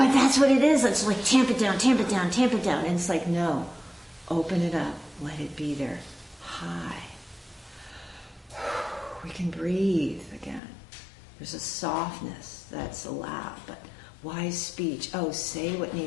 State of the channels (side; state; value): right; drops out; at 10.6 s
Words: that's what it is. It's like tamp it down, tamp it down, tamp it down. And it's like, no, open it up, let it be there. High. We can breathe again. There's a softness that's allowed, but wise speech. Oh, say what